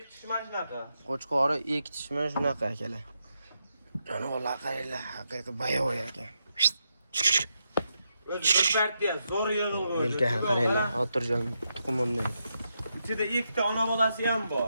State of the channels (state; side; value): inverted; both; correlation -0.83